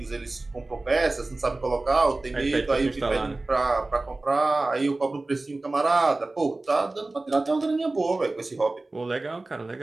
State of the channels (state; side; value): quieter; left; 3.1 dB